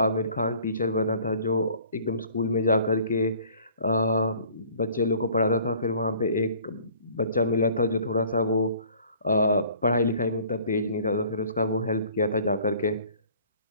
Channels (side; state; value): both; inverted; correlation -0.53